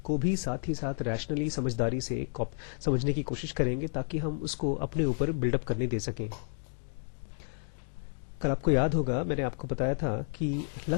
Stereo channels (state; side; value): silent; right; digital silence